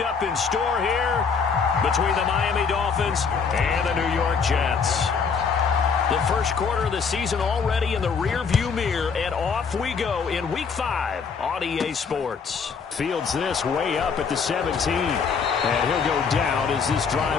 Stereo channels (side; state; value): right; quieter; 5.7 dB